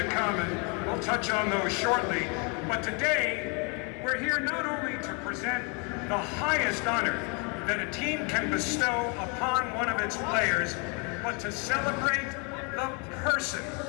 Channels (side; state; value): right; quieter; 34.1 dB